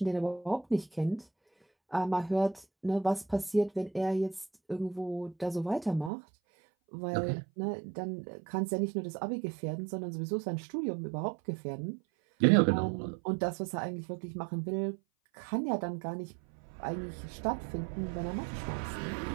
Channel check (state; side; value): drops out; left; at 6.1 s